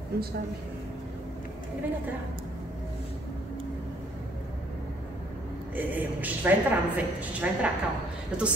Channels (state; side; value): normal; both; correlation 0.64